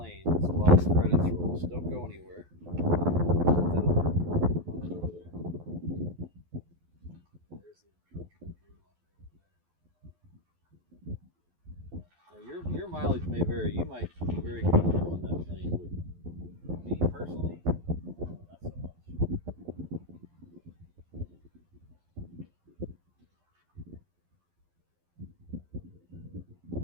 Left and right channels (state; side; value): late; left; 12 ms